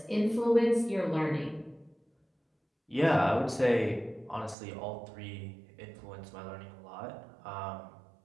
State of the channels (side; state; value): left; drops out; at 4.5 s